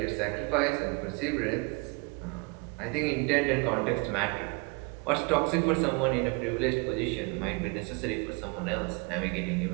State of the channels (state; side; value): quieter; left; 29.7 dB